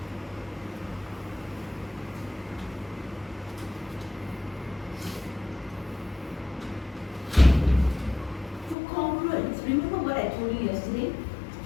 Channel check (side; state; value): right; drops out; at 8.8 s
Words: Remember what I told you yesterday?